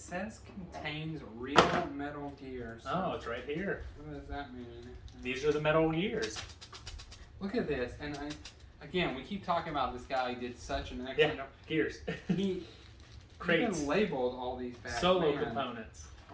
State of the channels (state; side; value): identical; both; correlation 1.00